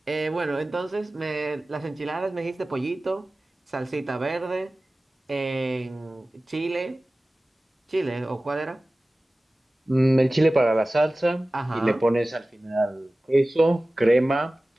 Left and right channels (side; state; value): both; normal; correlation 0.97